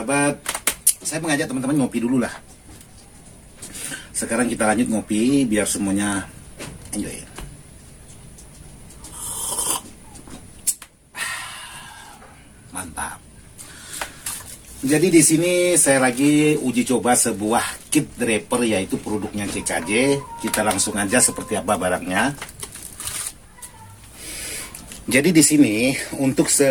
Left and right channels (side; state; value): both; identical; correlation 1.00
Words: saya mengajak teman-teman ngopi dulu lah. Sekarang kita lanjut ngopi biar semuanya enjoy. Mantap. Jadi di sini saya lagi uji coba sebuah kit draper yaitu produknya CKJ. Kita langsung aja seperti apa barangnya. Jadi di sini untuk